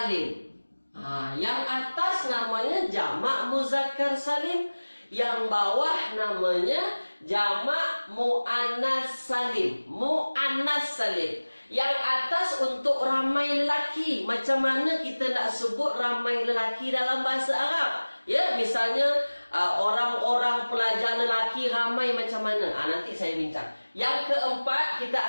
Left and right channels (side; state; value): both; inverted; correlation -1.00